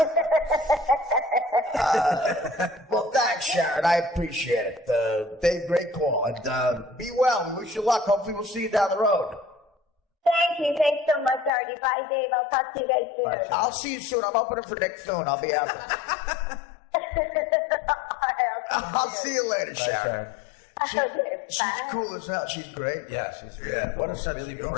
Well, thanks, Sharon. I appreciate it. Dave, great call. And be well. We wish you luck. Hopefully, we'll see you down the road. Thank you. Thanks so much, Artie. Bye, Dave. I'll talk to you guys soon. I'll see you soon. I'm opening for Nick soon. I'll be out there. I'll see you later, Sharon. She's cool as hell. She's great. Yeah, she's What a sense really of humor.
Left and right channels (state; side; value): drops out; right; at 11.5 s